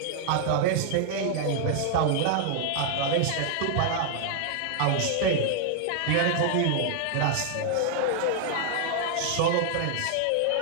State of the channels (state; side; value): different; both; correlation 0.00